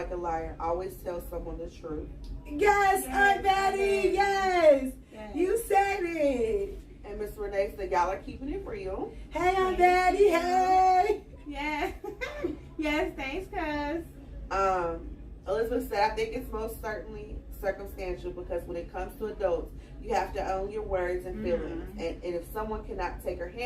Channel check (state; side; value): identical; both; correlation 1.00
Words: a liar. Always tell someone the truth. Yes, Aunt Betty, yes. You said it. And Miss Renee said, y'all are keeping it real. Hey, Aunt Betty, hey. Yes. Yes, thanks, cuz. Elizabeth said, I think it's most certainly circumstantial because when it comes to adults, you have to own your words and feelings. And if someone cannot take or